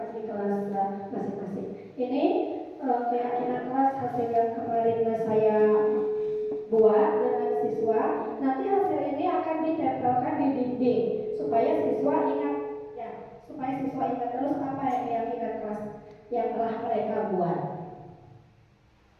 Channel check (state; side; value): identical; both; correlation 1.00